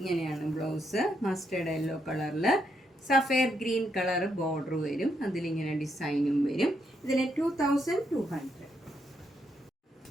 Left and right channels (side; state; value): both; normal; correlation 0.78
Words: ബ്ലൗസ്. മസ്റ്റേർഡ് യെല്ലോ കളറിൽ സഫയർ ഗ്രീൻ കളർ ബോർഡർ വരും. അതിലിങ്ങനെ ഡിസൈനും വരും. ഇതിന് 2200.